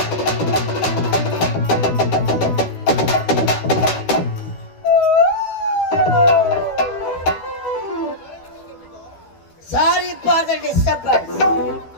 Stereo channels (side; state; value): right; late; 12 ms